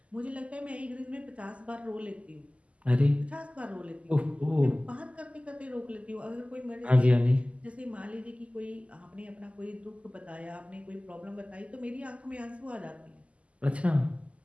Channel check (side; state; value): left; late; 0.062 ms